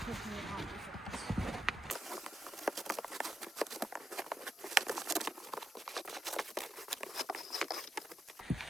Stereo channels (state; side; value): normal; both; correlation 0.81